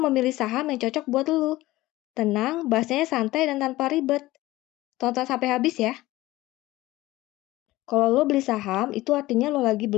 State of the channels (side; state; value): right; quieter; 17.8 dB